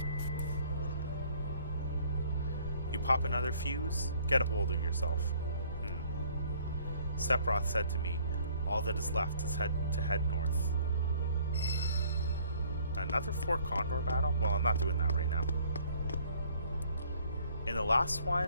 You pop another fuse? Get a hold of yourself. Sephiroth said to me, all that is left is to head north. Another 4 Condor battle? Well, I'm not doing that right now. In the last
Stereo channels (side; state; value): both; inverted; correlation -0.58